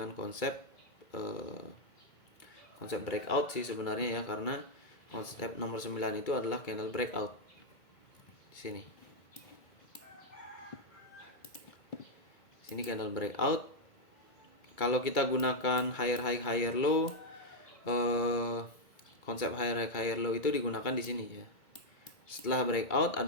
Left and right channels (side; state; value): right; late; 2.2 ms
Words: konsep breakout sih sebenarnya ya, karena konsep nomor 9 itu adalah candle breakout. Di sini. Sini candle breakout. Kalau kita gunakan higher high higher low, konsep higher high higher low itu digunakan di sini ya. Setelah breakout